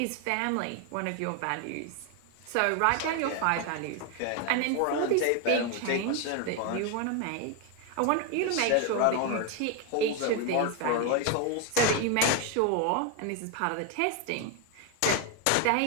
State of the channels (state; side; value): different; both; correlation 0.01